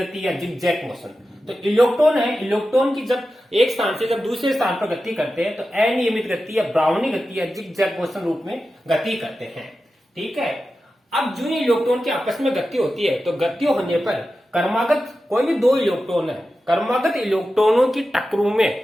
या जिगजैग मोशन। तो इलेक्ट्रॉन है, इलेक्ट्रॉन की जब एक स्थान से जब दूसरे स्थान पर गति करते हैं तो अनियमित गति या ब्राउनी गति या जिगजैग मोशन रूप में गति करते हैं। ठीक है। अब जो इलेक्ट्रॉन की आपस में गति होती है, तो गति होने पर क्रमागत कोई भी दो इलेक्ट्रॉन है, क्रमागत इलेक्ट्रॉनों की टक्करों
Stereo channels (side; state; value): both; normal; correlation 0.92